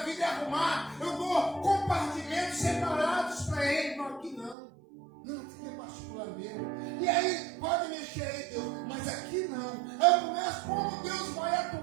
vida e arrumar. Eu dou compartimentos separados para Ele. Não, aqui não. Não, aqui é particular mesmo. E aí, pode mexer aí, Deus, mas aqui não. Aí eu começo como Deus vai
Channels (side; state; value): left; drops out; at 4.5 s